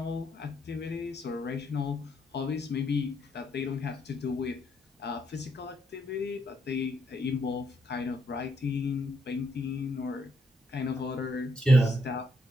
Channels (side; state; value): both; normal; correlation 0.75